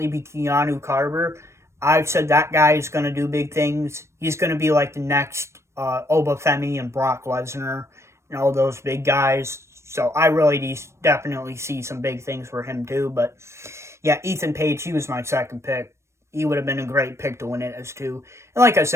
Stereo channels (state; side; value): late; left; 0.13 ms